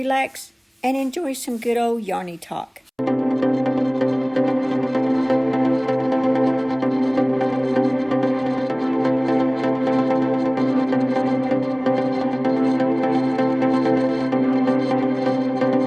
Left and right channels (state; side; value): identical; both; correlation 1.00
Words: and enjoy some good old yarny talk.